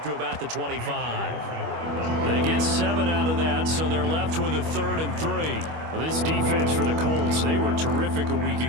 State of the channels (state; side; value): late; left; 25 ms